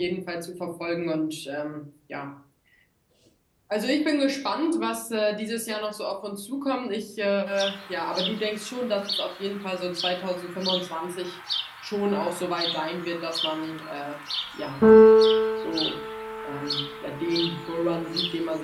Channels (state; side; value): identical; both; correlation 1.00